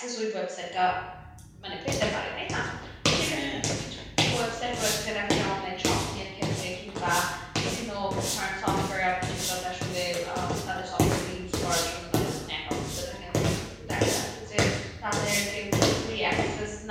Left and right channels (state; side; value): identical; both; correlation 1.00